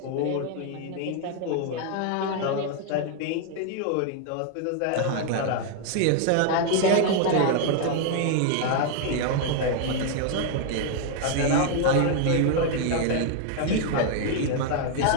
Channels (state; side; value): different; both; correlation 0.00